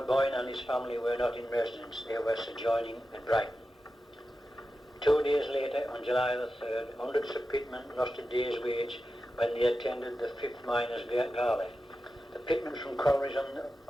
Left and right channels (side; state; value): both; normal; correlation 0.92